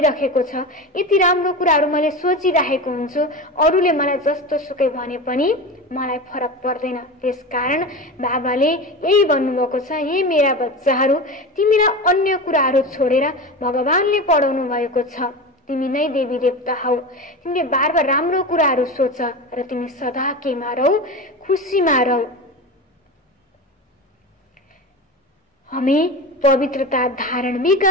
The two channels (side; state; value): both; normal; correlation 0.26